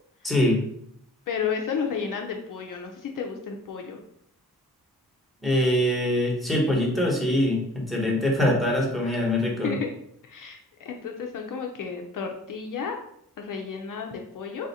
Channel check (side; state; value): both; normal; correlation 0.51